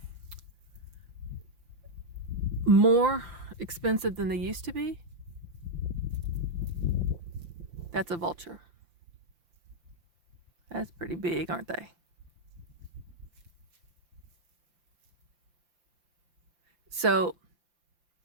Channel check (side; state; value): left; late; 5.8 ms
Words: more expensive than they used to be. That's a vulture. That's pretty big, aren't they? So